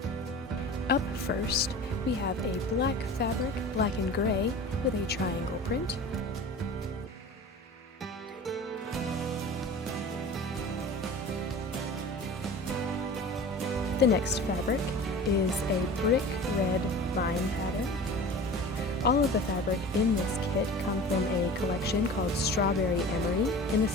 Up first, we have a black fabric, black and gray, with a triangle print. The next fabric is a brick red vine pattern. All of the fabric in this kit come from a collection called Strawberry Emery, and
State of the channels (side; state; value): both; normal; correlation 0.38